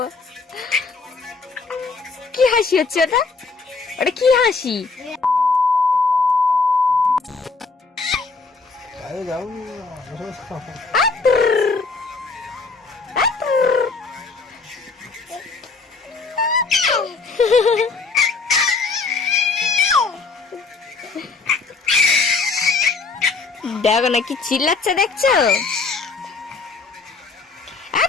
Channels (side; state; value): right; quieter; 4.3 dB